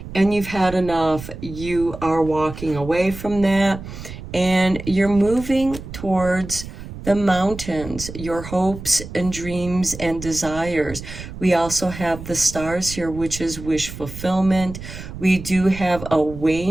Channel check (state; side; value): noise; right; rumble, 12 dB below the sound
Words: and you've had enough. You are walking away from that, and you're moving towards the mountains, your hopes and dreams and desires. We also have the stars here, which is wish fulfillment. We do have a